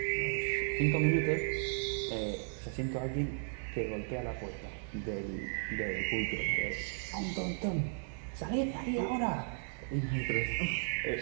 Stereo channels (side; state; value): left; silent; digital silence